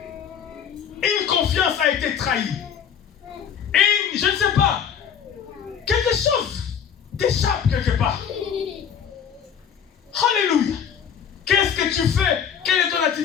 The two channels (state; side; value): quieter; right; 8.0 dB